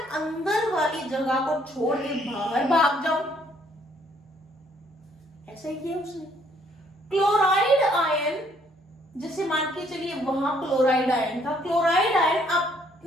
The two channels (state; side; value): normal; both; correlation 0.65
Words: अंदर वाली जगह को छोड़ के बाहर भाग जाऊं। ऐसा ही किया उसने। क्लोराइड आयन, जैसे मान के चलिए वहां क्लोराइड आयन था, क्लोराइड आयन